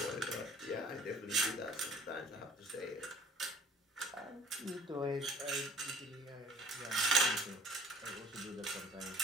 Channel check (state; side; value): normal; both; correlation 0.51